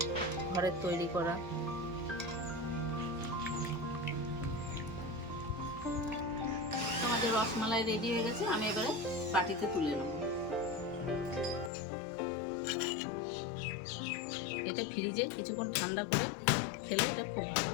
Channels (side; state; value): right; drops out; at 11.7 s